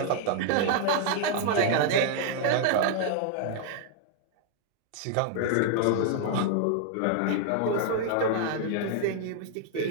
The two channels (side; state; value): both; different; correlation -0.01